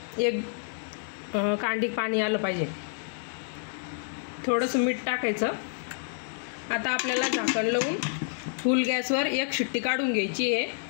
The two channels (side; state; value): right; silent; digital silence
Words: एक कांडी पाणी आलं पाहिजे। थोडंसं मीठ टाकायचं। आता आपल्याला झाकण लावून फुल गॅसवर एक शिट्टी काढून घ्यायची आहे।